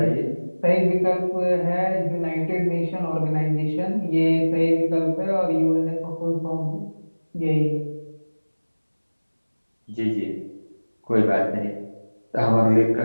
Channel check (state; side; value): inverted; both; correlation -1.00